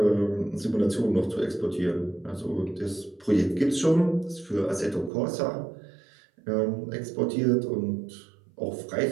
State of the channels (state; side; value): drops out; left; at 5.1 s